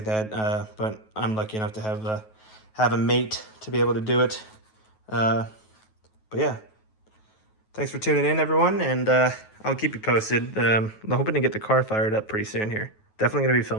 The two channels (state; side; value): late; right; 9.3 ms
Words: that, but I'm lucky enough to have a mate to be able to do it. But yeah, thanks for tuning in, everyone, and I'll keep you posted. I'm hoping to get the car fired up pretty soon here. Definitely going to be